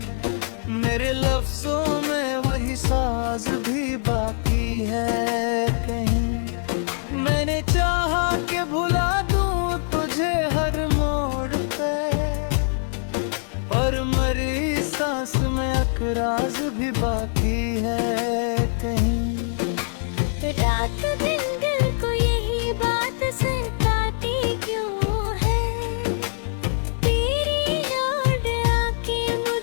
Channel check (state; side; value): silent; right; 58 dB below the other